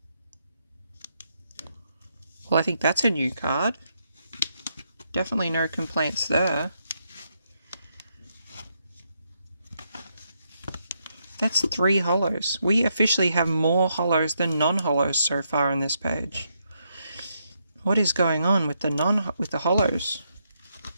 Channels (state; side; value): inverted; both; correlation -0.79